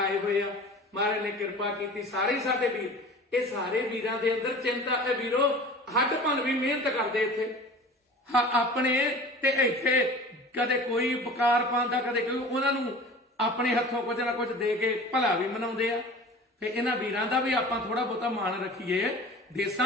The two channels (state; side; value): normal; both; correlation 0.40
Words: ਹੋਏ ਆ। ਮਹਾਰਾਜ ਨੇ ਕਿਰਪਾ ਕੀਤੀ। ਸਾਰੇ ਸਾਡੇ ਵੀਰ, ਇਹ ਸਾਰੇ ਵੀਰਾਂ ਦੇ ਅੰਦਰ ਚਿੰਤਾ ਹੈ ਵੀਰੋ। ਹੱਡ ਭੰਨ ਵੀ ਮਿਹਨਤ ਕਰਦੇ ਇੱਥੇ ਆਪਣੇ ਤੇ ਇੱਥੇ ਕਦੇ ਕੋਈ ਬਕਾਰ ਪਾਉਂਦਾ, ਕਦੇ ਕੋਈ ਉਹਨਾਂ ਨੂੰ ਆਪਣੇ ਹੱਥੋਂ ਕੁਝ ਨਾ ਕੁਝ ਦੇ ਕੇ ਭਲਾ ਵੀ ਮਨਾਉਂਦੇ ਆ। ਤੇ ਇਹਨਾਂ ਵੀਰਾਂ ਦਾ ਵੀ ਆਪਾਂ ਥੋੜਾ ਬਹੁਤਾ ਮਾਣ ਰੱਖੀਏ।